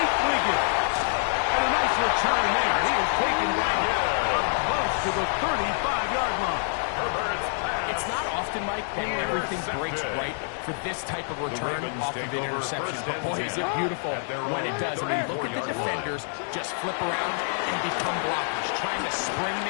Wiggins. And a nice return there. He is taken down close to the 35-yard line. It's not often often, Mike, that everything breaks right for this type of return off of an interception. But boy, is it beautiful when it does. I mean, look at the defenders just flip around and become blockers, trying to spring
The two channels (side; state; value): right; silent; digital silence